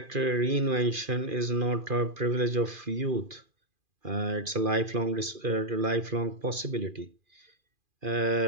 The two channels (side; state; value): left; late; 2.4 ms